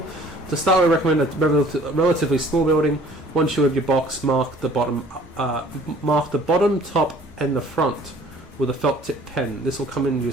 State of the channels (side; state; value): both; normal; correlation 0.53